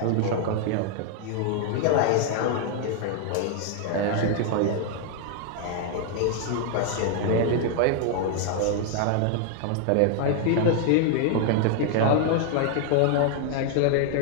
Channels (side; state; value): both; different; correlation 0.00